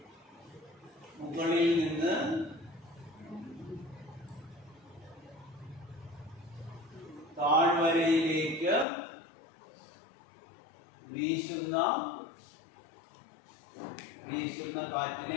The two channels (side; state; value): right; drops out; at 8.8 s